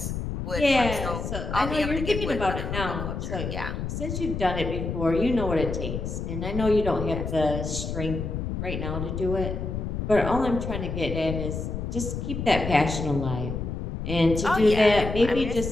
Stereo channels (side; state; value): left; noise; rumble, 4 dB below the sound